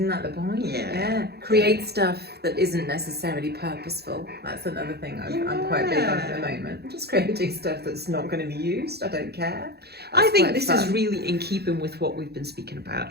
that the point? Yeah. Create stuff that isn't necessarily purposeful. That's another thing I'm quite big on at the moment. Just creating stuff that's not going to be used. I don't care. I think this is really in keeping with what we've been speaking about.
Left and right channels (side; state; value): left; late; 0.47 ms